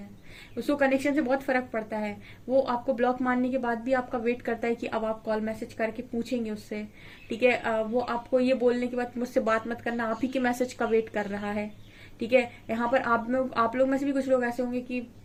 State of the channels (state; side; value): identical; both; correlation 1.00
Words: उसको कनेक्शन से बहुत फर्क पड़ता है। वो आपको ब्लॉक मारने के बाद भी आपका वेट करता है कि अब आप कॉल मैसेज करके पूछेंगे उससे, ठीक है। वो आपको ये बोलने के बाद मुझसे बात मत करना, आप ही के मैसेज का वेट कर रहा है, ठीक है। यहाँ पर आप लोग में से भी कुछ लोग ऐसे होंगे कि